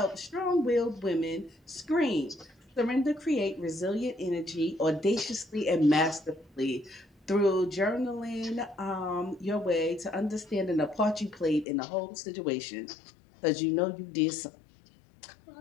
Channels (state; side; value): drops out; right; at 11.7 s